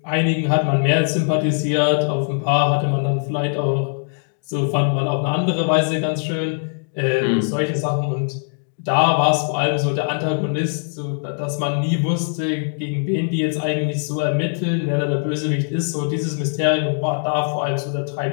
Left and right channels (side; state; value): right; silent; digital silence